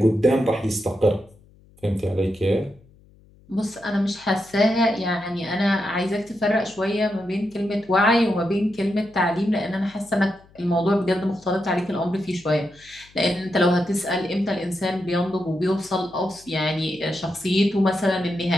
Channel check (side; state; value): left; noise; hum, 28 dB below the sound